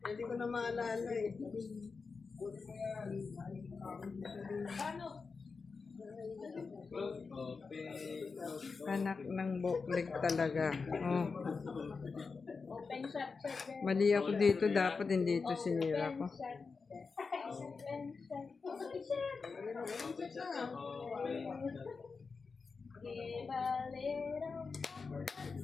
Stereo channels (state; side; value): quieter; right; 4.7 dB